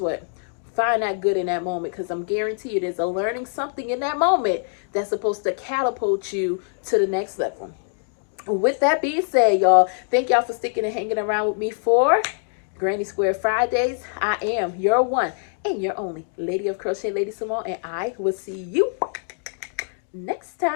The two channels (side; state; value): right; silent; digital silence